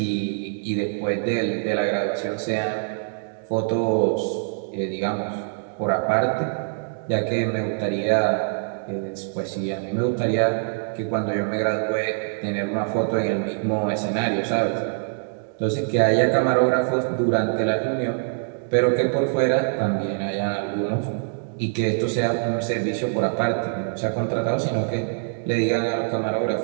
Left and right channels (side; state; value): left; silent; digital silence